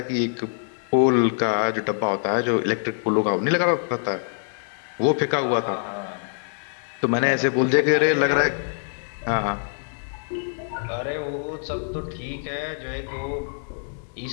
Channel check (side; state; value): right; silent; digital silence